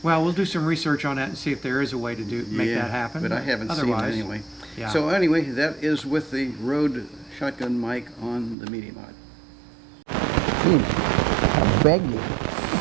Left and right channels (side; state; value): left; drops out; at 8.6 s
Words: Well, we'll do some research on that and see if there is a way to make Yeah, that happen. But I haven't Otherwise, seen it anyway. Yeah. So anyway, that is with the Rode shotgun mic on the Media Mod. I beg you.